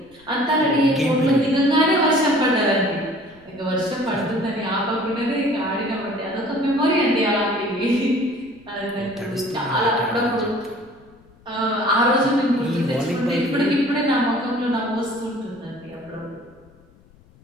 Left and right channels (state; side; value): noise; left; rumble, 28 dB below the sound